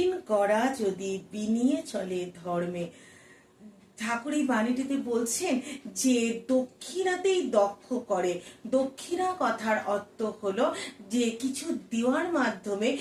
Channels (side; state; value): both; identical; correlation 1.00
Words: করা যদি বিনিয়ে চলে ধর্মে। ঠাকুর এই বাণীটিতে বলছেন যে দক্ষিণাতেই দক্ষ করে। দক্ষিণা কথার অর্থ হলো যে কিছু দেওয়ার মাধ্যমে